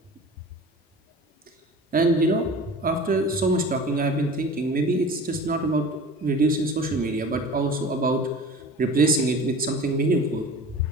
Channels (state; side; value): normal; both; correlation 0.39